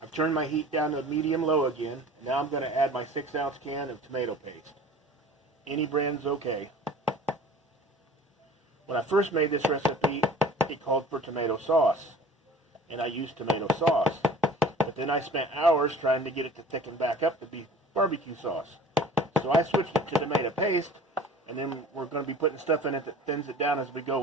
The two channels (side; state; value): both; normal; correlation 0.44